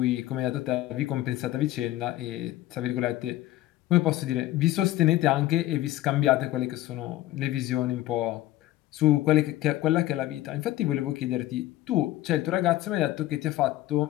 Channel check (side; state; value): right; quieter; 15.3 dB